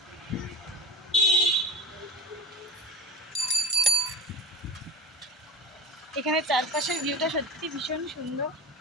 এখানে চারপাশের ভিউটা সত্যি ভীষণ সুন্দর।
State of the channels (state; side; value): normal; both; correlation 0.30